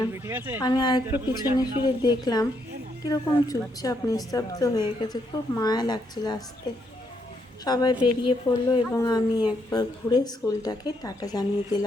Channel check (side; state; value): both; normal; correlation 0.76